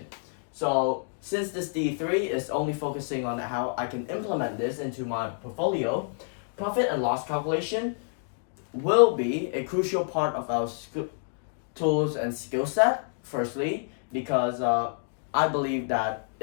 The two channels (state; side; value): silent; right; digital silence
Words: So since this DE3 is only focusing on how I can implement this into my portfolio, profit and loss calculation will be a crucial part of our tools and skill set. Firstly, because I believe that